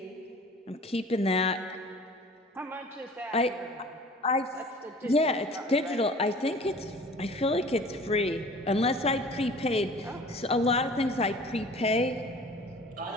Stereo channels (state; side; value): normal; both; correlation 0.45